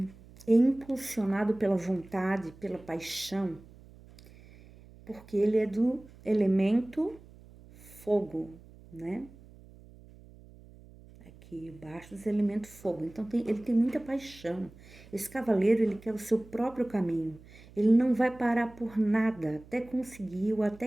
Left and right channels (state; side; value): noise; right; hum, 22 dB below the sound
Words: é impulsionado pela vontade, pela paixão, porque ele é do elemento fogo, né? Aqui, Bastos é elemento fogo, então ele tem muita paixão. Esse cavaleiro, ele quer o seu próprio caminho. Ele não vai parar por nada até conseguir ou